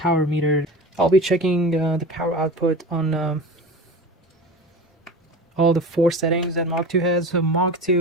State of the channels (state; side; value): normal; both; correlation 0.32